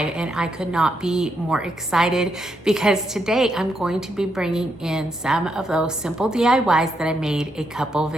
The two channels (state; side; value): normal; both; correlation 0.79